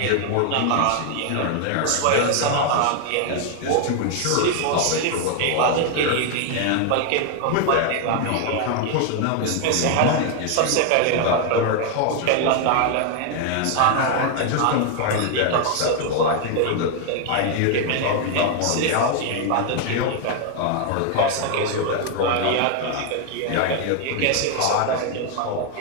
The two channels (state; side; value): different; both; correlation 0.00